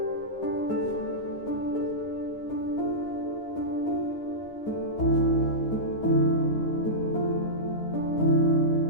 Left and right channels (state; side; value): late; right; 9.7 ms